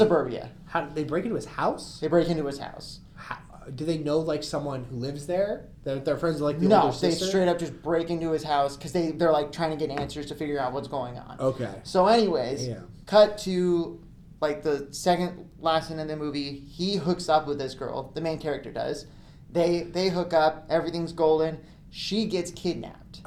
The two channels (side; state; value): both; identical; correlation 1.00